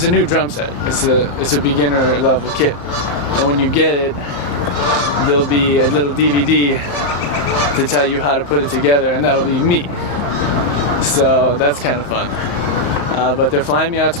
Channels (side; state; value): right; late; 35 ms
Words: a new drum set. It's a beginner level kit, and when you get it, there'll be a little DVD to tell you how to put it together, and that'll be me. So that's kind of fun. But they're flying me out